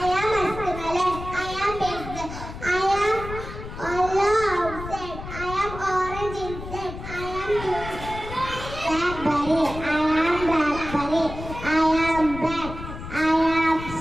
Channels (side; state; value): left; noise; rumble, 10 dB below the sound